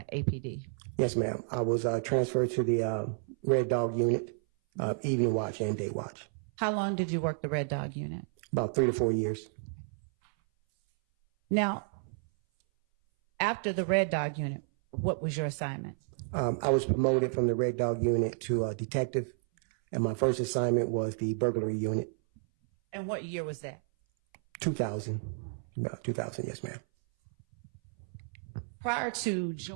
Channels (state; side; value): silent; left; 57 dB below the other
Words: APD? Yes, ma'am. I was transferred to the Red Dog Unit, Evening Watch and Day Watch. How long did you work the Red Dog Unit? About 3 to 4 years. Now, after the Red Dog Unit, what was your assignment? I was promoted from the Red Dog Unit to detective, and my first assignment was the burglary unit. And what year was that? 2000. About 2000, yes, ma'am. Prior to